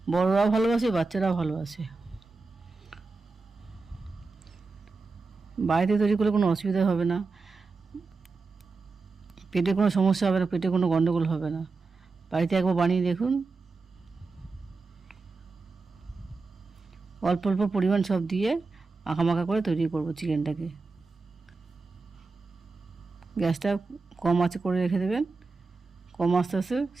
বড়রাও ভালোবাসে, বাচ্চারাও ভালোবাসে। বাড়িতে তৈরি করলে কোনো অসুবিধা হবে না, পেটে কোনো সমস্যা হবে না, পেটে কোনো গণ্ডগোল হবে না। বাড়িতে একবার বানিয়ে দেখুন। অল্প অল্প পরিমাণ সব দিয়ে মাখা করে তৈরি করব চিকেনটাকে। গ্যাসটা কম আঁচে করে রেখে দেবেন। কম আস্তে আস্তে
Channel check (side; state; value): left; quieter; 4.0 dB